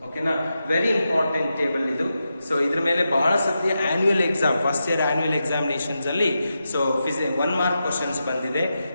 ಓಕೆನಾ? ವೆರಿ ಇಂಪಾರ್ಟೆಂಟ್ ಟೇಬಲ್ ಇದು. ಸೊ ಇದ್ರ ಮೇಲೆ ಬಹಳ ಸತಿ annual exam, first year annual examinations ಅಲ್ಲಿ ಸೊ 1 ಮಾರ್ಕ್ ಕ್ವಶನ್ಸ್ ಬಂದಿದೆ.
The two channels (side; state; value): both; inverted; correlation -0.88